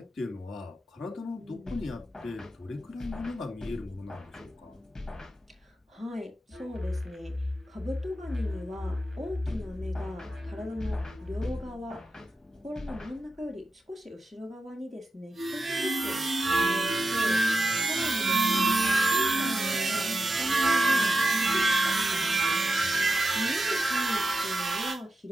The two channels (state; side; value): normal; both; correlation 0.90